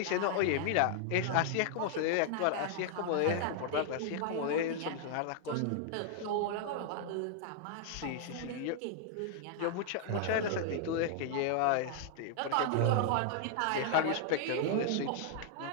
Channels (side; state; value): both; different; correlation 0.00